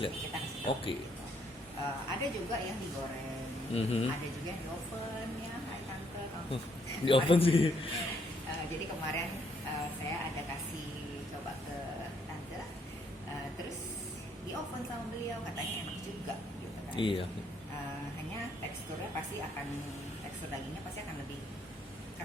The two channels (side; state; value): both; normal; correlation 0.70